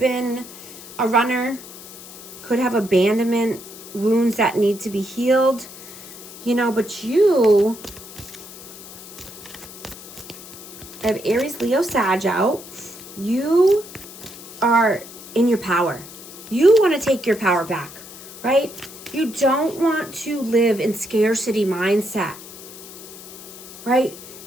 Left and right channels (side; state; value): left; noise; hiss, 15 dB below the sound